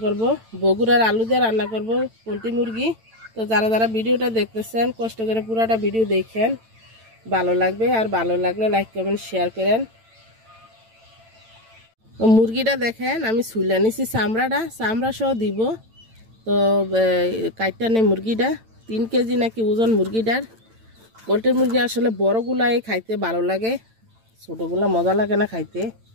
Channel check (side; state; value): left; late; 9.0 ms